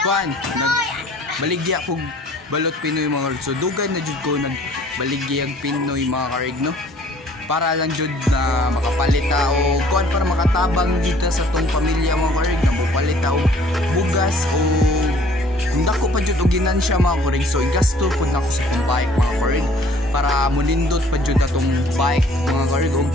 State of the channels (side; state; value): both; normal; correlation 0.55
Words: baligya kog balot Pinoy mga karig. So dugay na jud ko nagbaligya ang Pinoy mga karig no. Para lang jud na makapalita o kuan para makatabang dito sa tong pamilya mga karig na mopalita og bugas o kung dako pa jud og ginansya mga karig. So igasto pud nako sa tong bike mga karig para monindot pa jud atong bike mga karig og